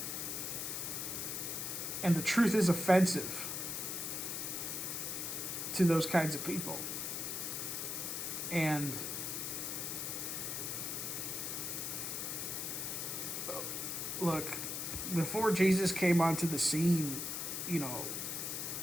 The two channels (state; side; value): noise; left; hiss, 3 dB below the sound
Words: And the truth is offensive to those kinds of people. And look, before Jesus came onto the scene,